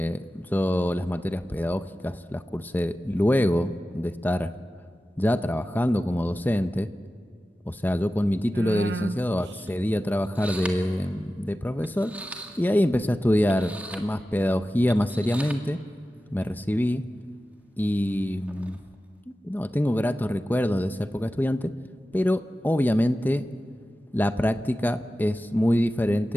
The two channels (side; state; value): both; normal; correlation 0.94